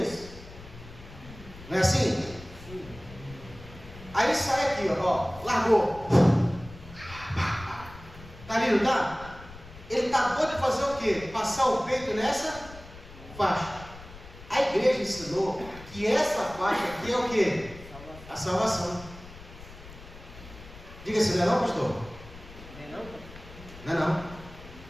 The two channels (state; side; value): noise; left; rumble, 17 dB below the sound